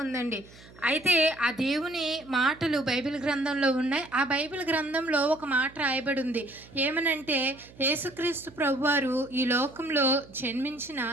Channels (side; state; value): right; noise; hum, 22 dB below the sound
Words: ఉందండి. అయితే ఆ దేవుని మాటలు బైబిల్ గ్రంథంలో ఉన్నాయి. ఆ బైబిల్ గ్రంథంలో ఒక మాట రాయబడి ఉంది. ఏమనంటే యేసుక్రీస్తు ప్రభువారు ఈ లోకంలో జన్మించిన